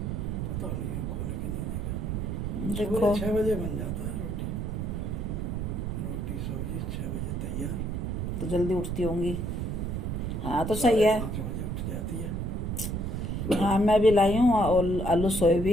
पता नहीं, खोल के नहीं देखा। देखो 6 बजे बन जाता है रोटी। रोटी सब्जी 6 बजे तैयार। तो जल्दी उठती होंगी। हाँ तो सही है। 5 बजे उठ जाती है। हाँ मैं भी लाई हूँ और आलू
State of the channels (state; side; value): noise; right; rumble, 2 dB below the sound